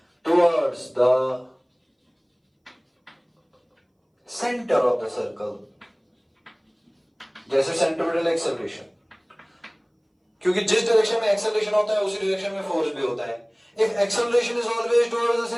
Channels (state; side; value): identical; both; correlation 1.00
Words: towards the center of the circle. जैसे सेंट्रिपिटल एक्सेलरेशन, क्योंकि जिस डायरेक्शन में एक्सेलरेशन होता है उसी डायरेक्शन में फोर्स भी होता है। If acceleration is always towards the